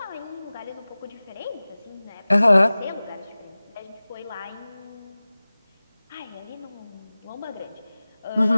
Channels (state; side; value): inverted; both; correlation -0.98